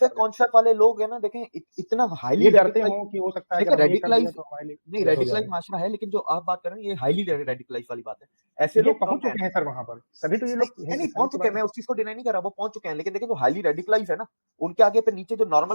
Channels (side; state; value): both; inverted; correlation -1.00